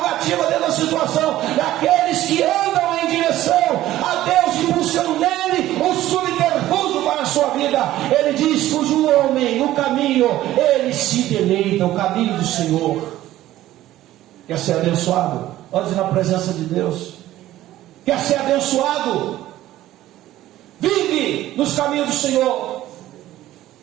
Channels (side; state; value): left; quieter; 14.5 dB